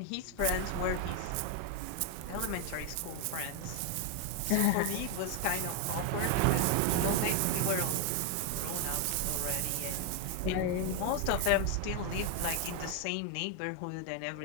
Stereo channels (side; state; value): both; different; correlation 0.00